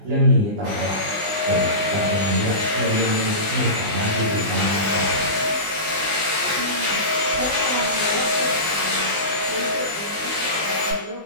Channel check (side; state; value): left; late; 20 ms